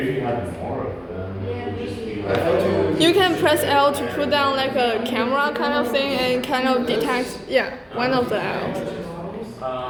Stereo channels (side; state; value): both; identical; correlation 1.00